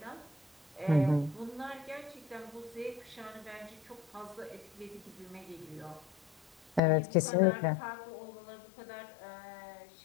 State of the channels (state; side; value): drops out; right; at 6.8 s